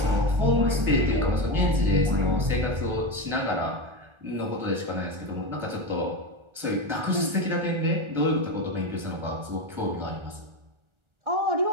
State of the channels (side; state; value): left; late; 1.4 ms